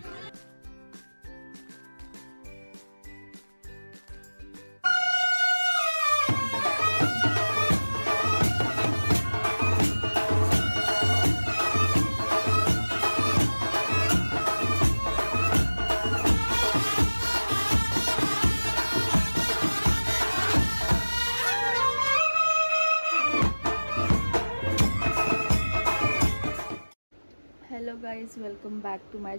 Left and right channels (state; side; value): inverted; both; correlation -1.00